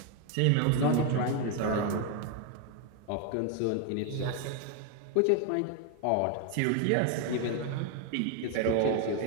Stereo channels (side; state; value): both; different; correlation 0.01